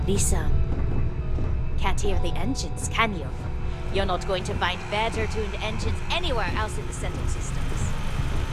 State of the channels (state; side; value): identical; both; correlation 1.00